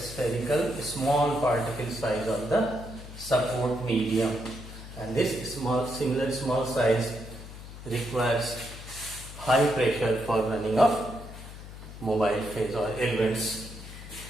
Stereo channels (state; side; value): noise; left; hum, 13 dB below the sound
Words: small particle size of the support medium, and this similar small size requires high pressure for running of mobile phase or elements.